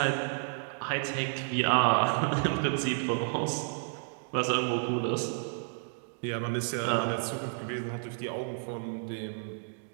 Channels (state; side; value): silent; left; digital silence